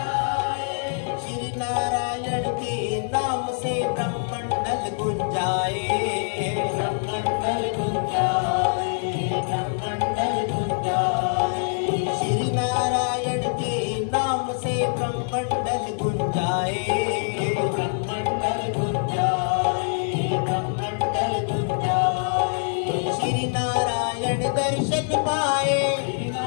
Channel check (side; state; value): right; silent; digital silence